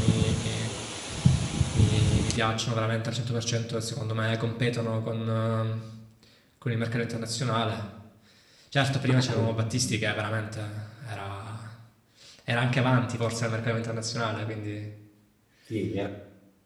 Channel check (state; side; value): identical; both; correlation 1.00